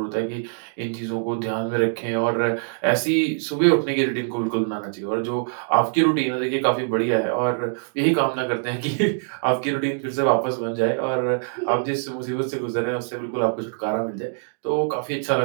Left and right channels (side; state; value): left; silent; digital silence